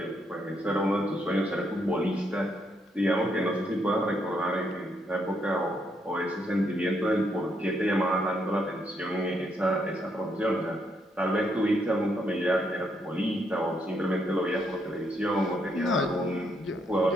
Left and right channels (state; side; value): normal; both; correlation 0.76